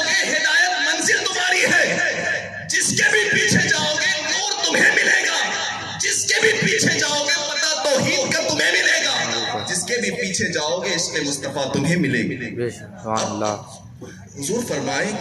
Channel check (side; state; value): both; identical; correlation 1.00